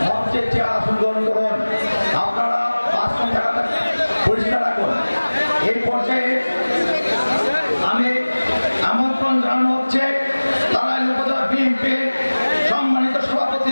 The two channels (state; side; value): inverted; both; correlation -1.00